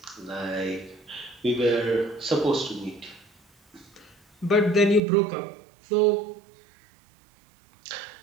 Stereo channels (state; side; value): drops out; left; at 5.0 s